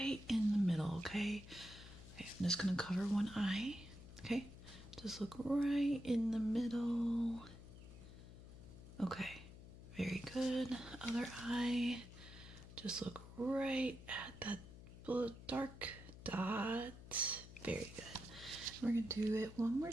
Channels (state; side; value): noise; left; hum, 15 dB below the sound